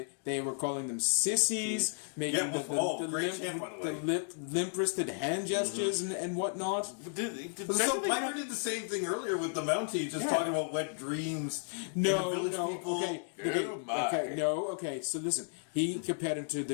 They were calling them sissies, making Yeah, well, great chant, by the way. limp-wristed hand gestures and whatnot. So Piper did the same thing earlier with the Mountie, just talking about wet dreams. No, and the village people. Okay. So listen, he compared him to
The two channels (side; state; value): right; silent; 55 dB below the other